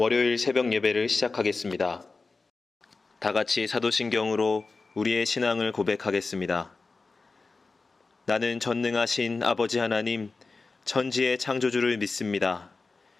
새벽 예배를 시작하겠습니다. 다 같이 사도신경으로 우리의 신앙을 고백하겠습니다. 나는 전능하신 아버지 하나님, 천지의 창조주를 믿습니다.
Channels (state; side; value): quieter; right; 3.9 dB